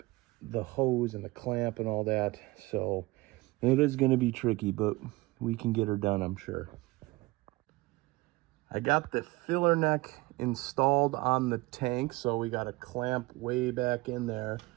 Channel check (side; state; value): left; quieter; 21.4 dB